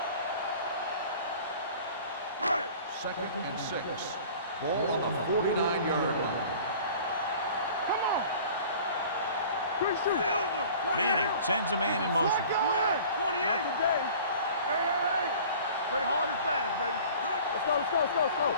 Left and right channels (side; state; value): both; inverted; correlation -0.45